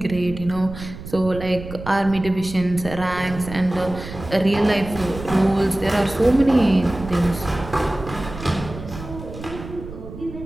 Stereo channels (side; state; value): right; noise; rumble, 12 dB below the sound